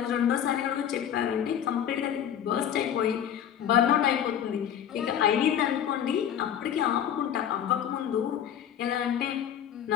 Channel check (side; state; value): right; quieter; 9.6 dB